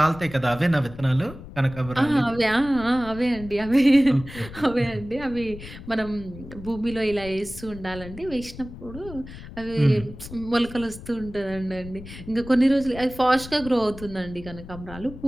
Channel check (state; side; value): noise; left; rumble, 14 dB below the sound